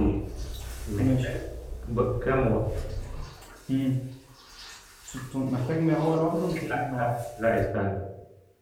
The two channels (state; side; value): identical; both; correlation 1.00